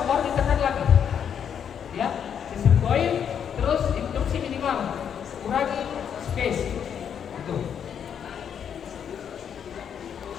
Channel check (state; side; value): quieter; right; 8.1 dB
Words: ditekan lagi. Ya, chest recoil, terus induksi minimal, kurangi space. Itu.